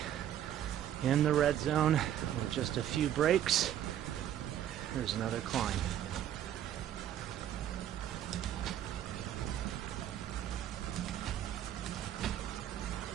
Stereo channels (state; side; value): quieter; left; 11.0 dB